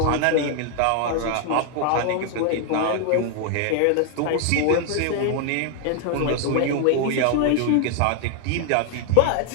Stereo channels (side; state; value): both; different; correlation 0.00